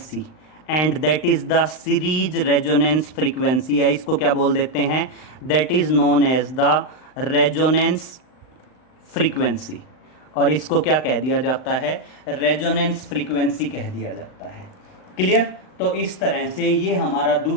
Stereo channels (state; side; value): late; right; 39 ms